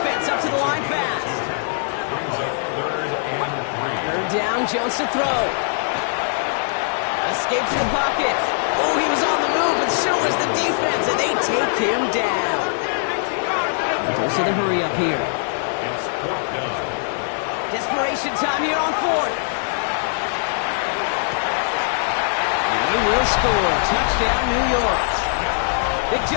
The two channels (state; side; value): silent; right; digital silence